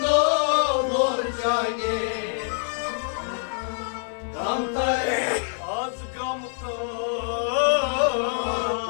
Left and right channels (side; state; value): right; silent; 62 dB below the other